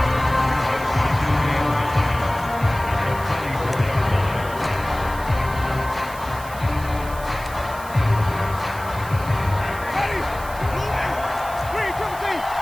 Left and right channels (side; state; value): right; noise; hiss, 17 dB below the sound